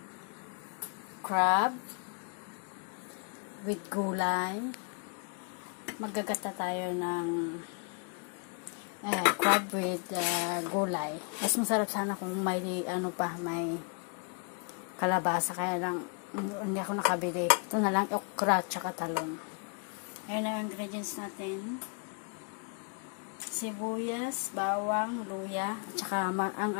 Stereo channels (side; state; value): right; quieter; 38.9 dB